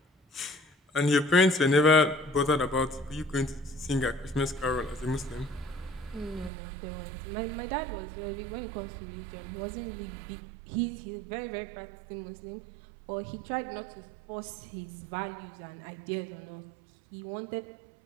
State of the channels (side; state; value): left; drops out; at 6.5 s